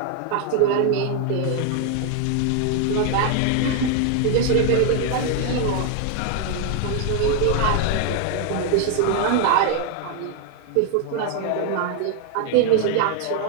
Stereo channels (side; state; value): both; different; correlation 0.01